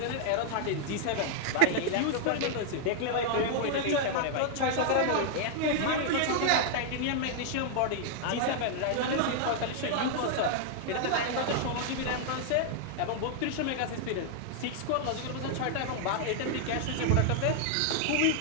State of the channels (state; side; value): different; both; correlation 0.00